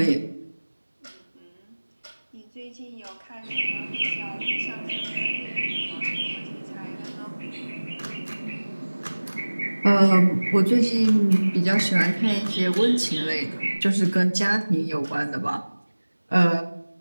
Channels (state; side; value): inverted; both; correlation -1.00